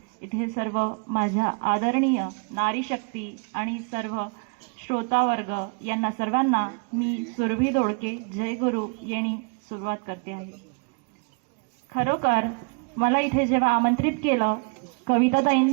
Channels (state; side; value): quieter; left; 36.1 dB